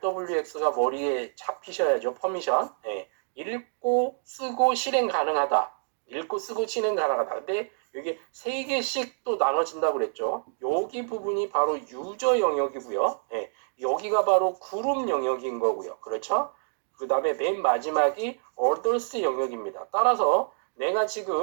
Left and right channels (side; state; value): left; silent; digital silence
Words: 머리에 잡히셔야죠. 퍼미션. 예. 읽고 쓰고 실행 가능하다. 읽고 쓰고 실행 가능하다. 근데 이게 3개씩 또 나눠진다고 그랬죠. 여기 부분이 바로 유저 영역이고요. 예. 여기가 바로 그룹 영역인 거고요. 그렇죠? 그 다음에 맨 마지막이 others 영역입니다. 따라서 내가